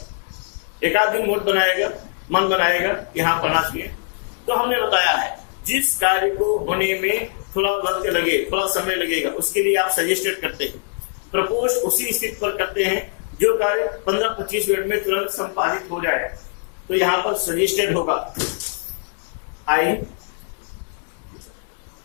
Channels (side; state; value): right; silent; digital silence